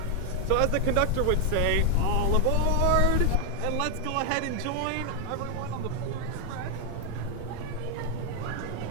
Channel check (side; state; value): both; different; correlation 0.00